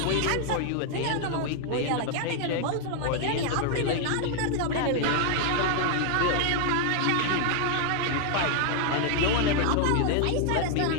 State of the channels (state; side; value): different; both; correlation 0.00